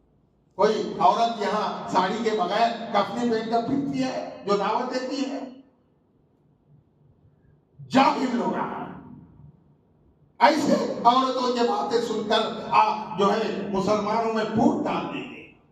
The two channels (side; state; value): both; identical; correlation 1.00